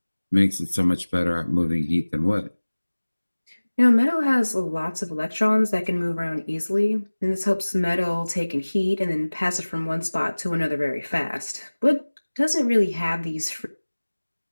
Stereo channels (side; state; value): both; inverted; correlation -1.00